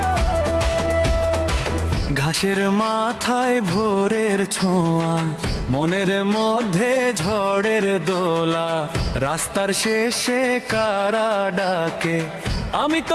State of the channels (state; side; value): identical; both; correlation 1.00